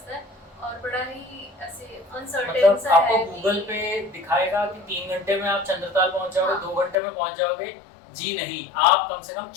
है और बड़ा ही ऐसे अनसर्टेन मतलब सा है। आपको गूगल पे दिखाएगा कि 3 घंटे में आप चंद्रताल पहुंच जाओगे, हाँ। 2 घंटे में पहुंच जाओगे, जी नहीं, आप कम से कम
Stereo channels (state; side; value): drops out; right; at 7.0 s